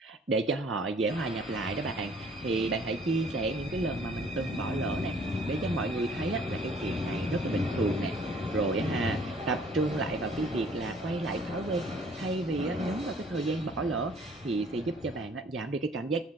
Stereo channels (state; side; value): normal; both; correlation 0.57